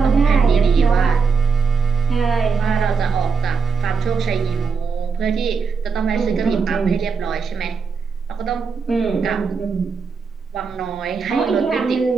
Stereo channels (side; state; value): left; quieter; 5.3 dB